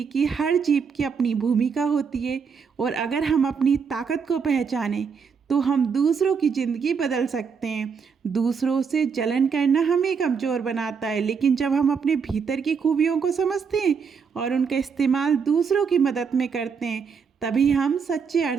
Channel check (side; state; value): left; quieter; 6.1 dB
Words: कि हर जीव की अपनी भूमिका होती है और अगर हम अपनी ताकत को पहचानें तो हम दूसरों की ज़िंदगी बदल सकते हैं। दूसरों से जलन करना हमें कमज़ोर बनाता है, लेकिन जब हम अपने भीतर की खूबियों को समझते हैं और उनका इस्तेमाल दूसरों की मदद में करते हैं, तभी हम सच्चे